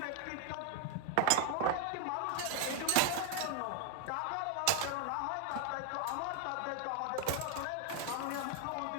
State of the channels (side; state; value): both; different; correlation 0.00